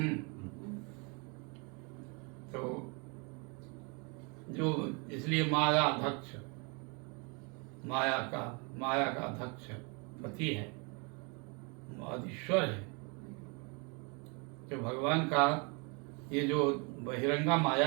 तो जो इसलिए माया अध्यक्ष, माया का अध्यक्ष पति है, आदिश्वर है। जो भगवान का ये जो बहिरंगा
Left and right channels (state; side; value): quieter; left; 32.8 dB